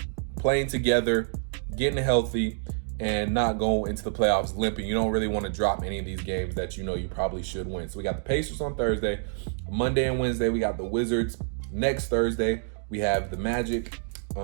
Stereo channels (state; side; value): silent; left; digital silence